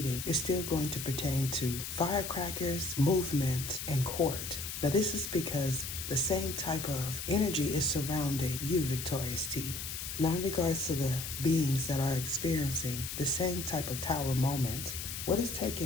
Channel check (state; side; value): noise; left; hiss, 6 dB below the sound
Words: is still going to pertain to firecrackers, movement, and court. Now this is because the same type of energy is surrounding you, Victorious T. Now, in regards to the beings that are experiencing the same type of tower moments, what is